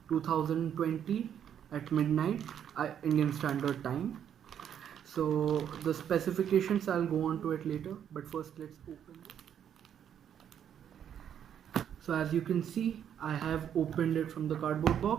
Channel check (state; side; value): quieter; left; 9.1 dB